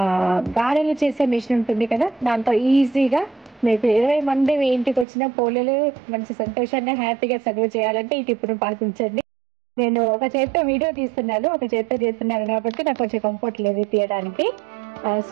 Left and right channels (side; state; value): left; drops out; at 5.1 s